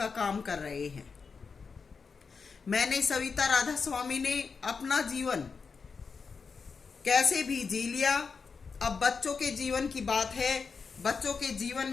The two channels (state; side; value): quieter; right; 5.2 dB